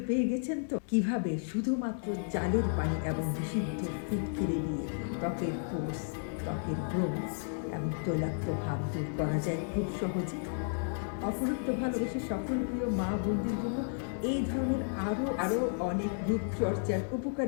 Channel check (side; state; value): right; silent; digital silence